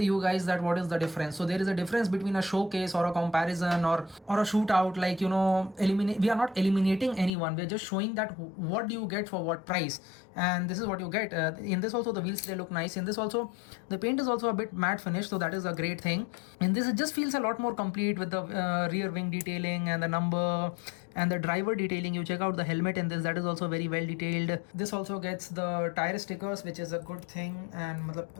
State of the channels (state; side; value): drops out; right; at 7.3 s